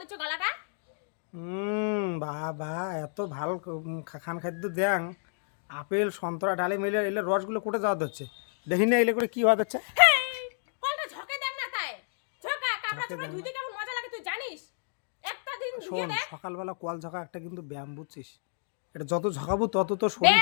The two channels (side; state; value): right; silent; digital silence